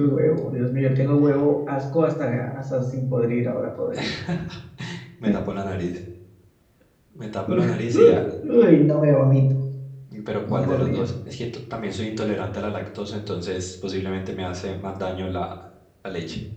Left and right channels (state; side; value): identical; both; correlation 1.00